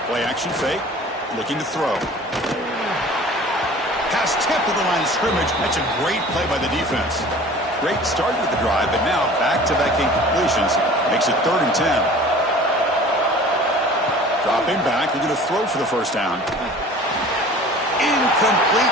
Play action fake. Looking to throw. Pass tipped to the line of scrimmage. That's a great play by the defense. Great start with the drive, but now back-to-back incompletions makes it 3rd and 10. Dropping back, looking to throw for the first down.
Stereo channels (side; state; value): both; normal; correlation 0.44